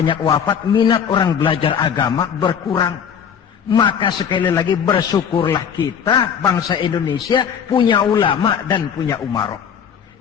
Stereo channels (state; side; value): quieter; right; 7.7 dB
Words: wafat, minat orang belajar agama berkurang. Maka sekali lagi bersyukurlah kita bangsa Indonesia punya ulama dan punya umarok.